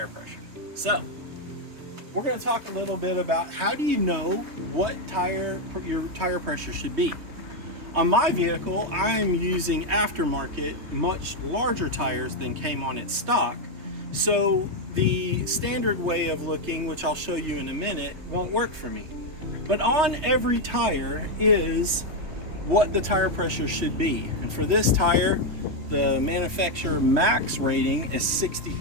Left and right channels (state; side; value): late; left; 3.2 ms